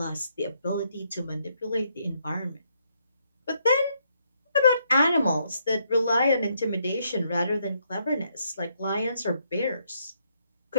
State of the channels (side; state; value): both; inverted; correlation -0.75